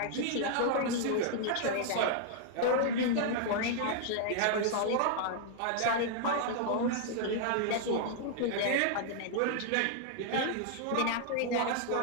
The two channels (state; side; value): different; both; correlation -0.01